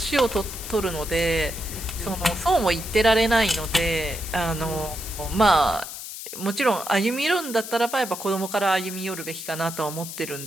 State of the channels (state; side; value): noise; left; hiss, 9 dB below the sound